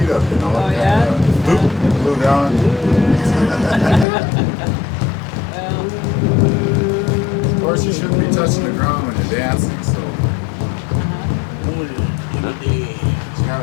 up, you know. Oh, yeah? Glue down. Of course, you shouldn't be touching the ground when you're dancing, so you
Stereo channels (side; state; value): right; drops out; at 4.0 s